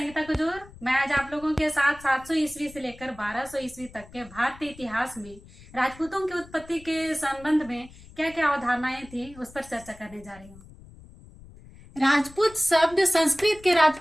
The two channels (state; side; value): noise; left; rumble, 21 dB below the sound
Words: कुजूर। मैं आज आप लोगों के साथ 700 ईस्वी से लेकर 1200 ईस्वी तक के भारतीय इतिहास में राजपूतों की उत्पत्ति के संबंध में क्या क्या अवधारणाएं थी उस पर चर्चा करने जा रही हूँ। राजपूत शब्द संस्कृत के